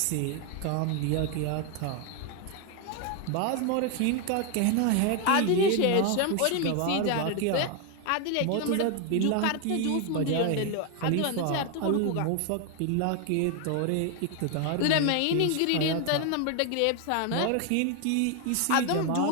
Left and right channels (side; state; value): both; different; correlation 0.01